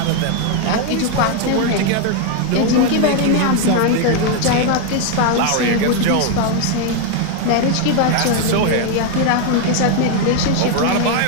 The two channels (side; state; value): both; different; correlation 0.01